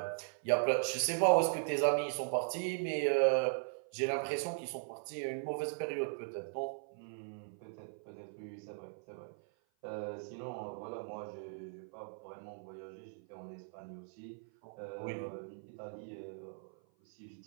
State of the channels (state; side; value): silent; left; 52 dB below the other